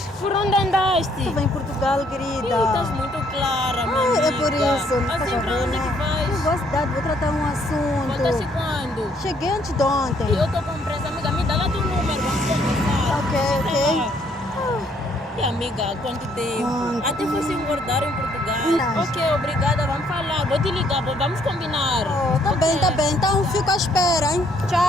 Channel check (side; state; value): both; normal; correlation 0.67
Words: Por onde andaste? Estou em Portugal, Ih, querida. estás muito clara, minha Ai, amiga. é por isso. Assim, Faz pra onde favor, que né? vais? Eu vou à cidade, vou tratar um Voltaste assunto. quando? Cheguei antes de ontem. E eu estou com pressa, amiga. Me dá lá teu número, vamos conversar. Ok, ok. E amiga, quanto tempo? Quanto? Até fosse engordar em Portugal. Verdade. Ok, obrigada, vamos falar. Vou te ligar, vamos combinar. Oh, tá Ok. bem, tá bem. Então fico à espera, hein?